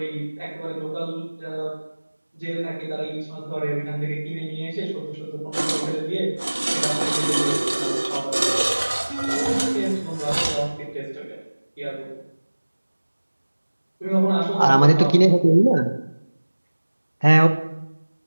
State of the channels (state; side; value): inverted; both; correlation -1.00